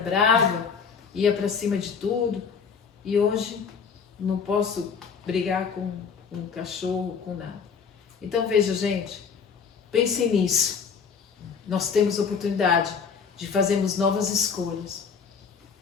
ia para cima de tudo. E hoje não posso brigar com um cachorro, com nada. Então veja, gente, pensem nisso. Nós temos oportunidade de fazermos novas escolhas.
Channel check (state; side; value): quieter; right; 6.1 dB